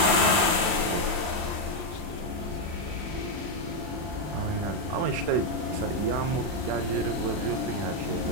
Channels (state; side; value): late; left; 40 ms